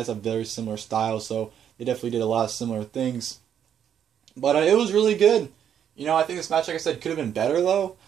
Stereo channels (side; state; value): left; quieter; 9.0 dB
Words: have very similar styles, so they definitely did a lot of similar things. But it was really good. I think this match, like I said, could have been better, though.